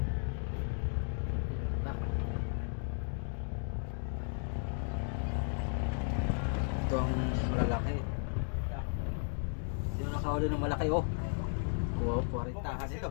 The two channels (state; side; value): silent; right; 55 dB below the other